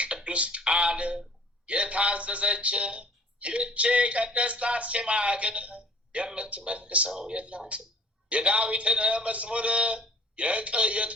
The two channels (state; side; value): normal; both; correlation 0.52